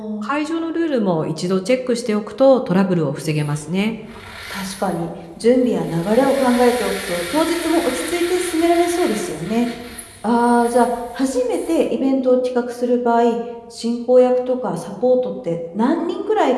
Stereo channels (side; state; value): both; identical; correlation 1.00